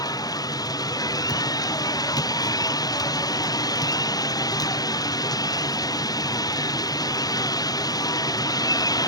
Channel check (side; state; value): right; late; 0.18 ms